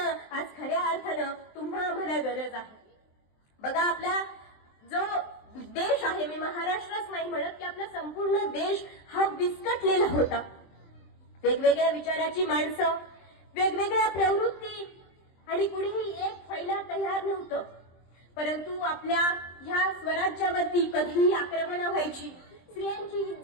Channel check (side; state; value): right; late; 23 ms